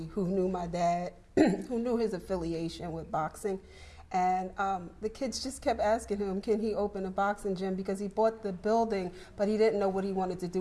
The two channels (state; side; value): identical; both; correlation 1.00